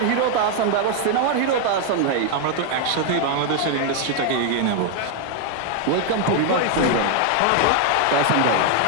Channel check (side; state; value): both; different; correlation 0.00